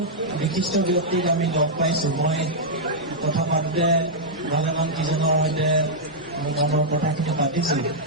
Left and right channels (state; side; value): normal; both; correlation -0.08